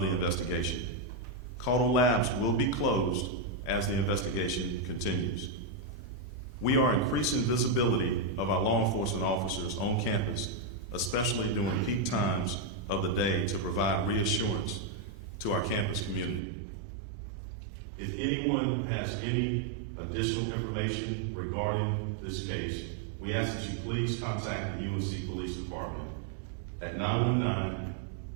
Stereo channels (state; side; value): drops out; left; at 16.4 s